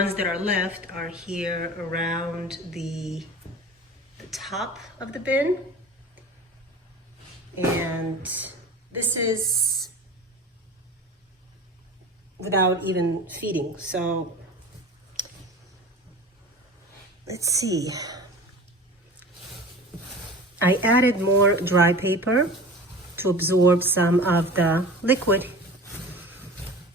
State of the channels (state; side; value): normal; both; correlation 0.37